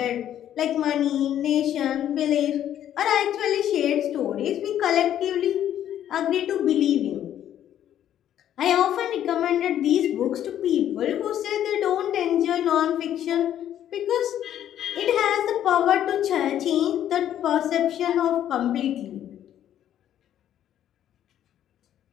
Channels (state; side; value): quieter; right; 10.9 dB